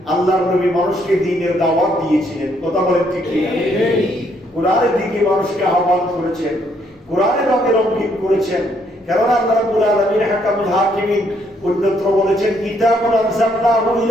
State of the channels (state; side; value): normal; both; correlation 0.70